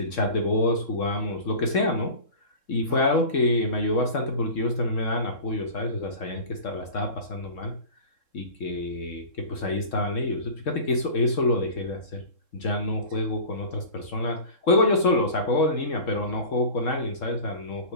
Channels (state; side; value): late; right; 3.7 ms